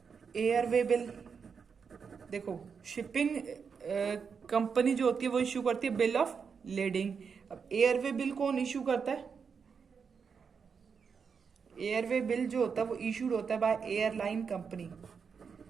एयरवे बिल. देखो शिपिंग कंपनी जो होती है वो इश्यू करती है बिल ऑफ लेडिंग. अब एयरवे बिल कौन इश्यू करता है, एयरवे बिल जो होता है वो इशूड होता है by airline company.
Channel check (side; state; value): left; quieter; 6.1 dB